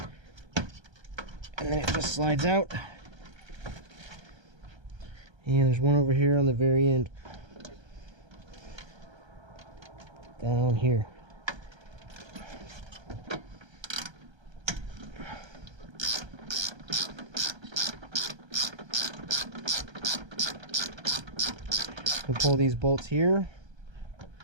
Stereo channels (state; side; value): late; left; 1.3 ms